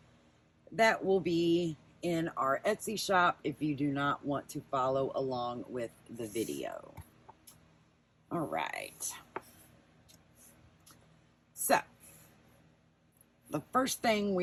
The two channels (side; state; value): both; identical; correlation 1.00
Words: that will be in our Etsy shop if you do not want to follow along with the video. All right. So, the first thing